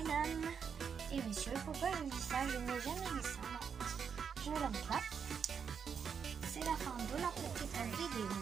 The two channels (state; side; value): quieter; left; 6.8 dB